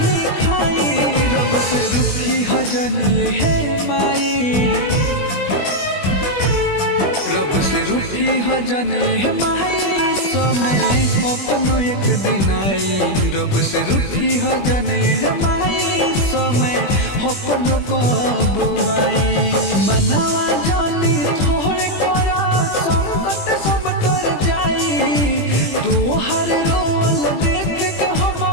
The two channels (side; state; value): right; late; 21 ms